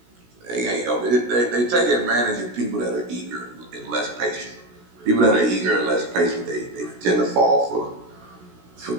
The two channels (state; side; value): late; left; 16 ms